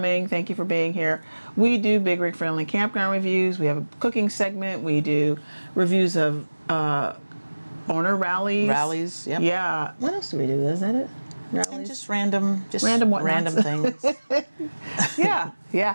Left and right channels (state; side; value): inverted; both; correlation -1.00